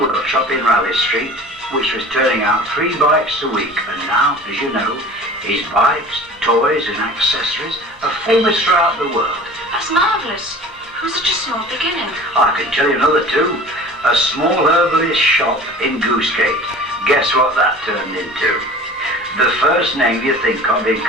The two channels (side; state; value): both; normal; correlation 0.42